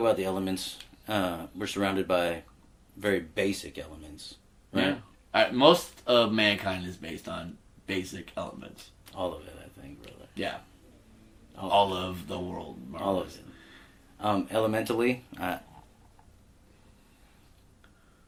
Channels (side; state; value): both; identical; correlation 1.00